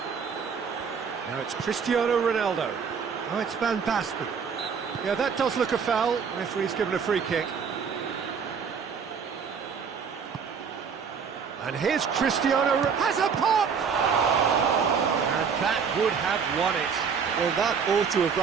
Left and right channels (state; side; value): quieter; left; 6.3 dB